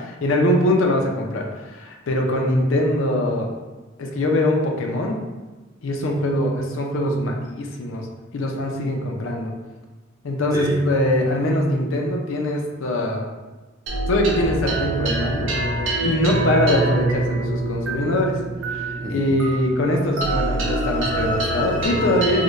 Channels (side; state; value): both; normal; correlation 0.40